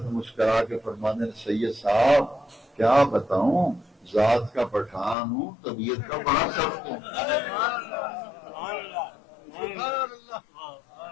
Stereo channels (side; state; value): right; drops out; at 5.2 s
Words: مسکرا کے فرماتے ہیں سید صاحب کیا بتاؤں، ذات کا پٹھان ہوں، طبیعت کا بڑا سخت ہوں۔